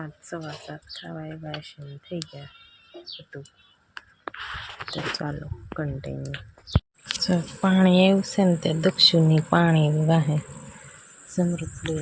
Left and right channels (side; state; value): both; identical; correlation 1.00